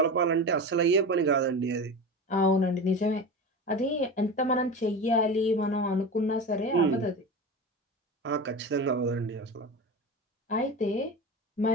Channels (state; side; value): normal; both; correlation 0.27